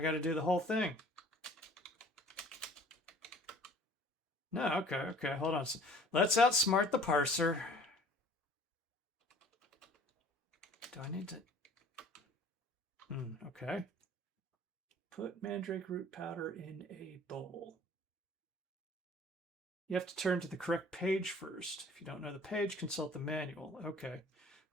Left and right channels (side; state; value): both; normal; correlation 0.51